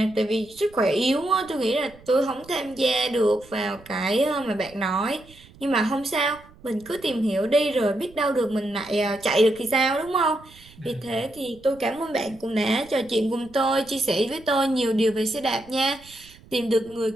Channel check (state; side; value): noise; right; rumble, 24 dB below the sound